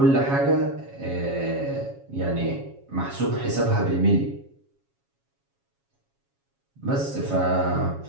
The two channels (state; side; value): late; left; 7.2 ms